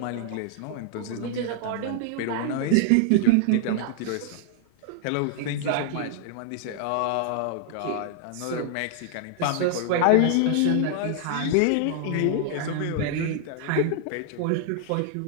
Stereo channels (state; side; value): different; both; correlation -0.01